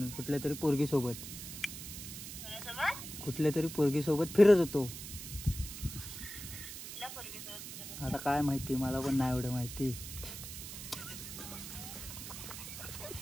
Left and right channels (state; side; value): noise; right; hiss, 9 dB below the sound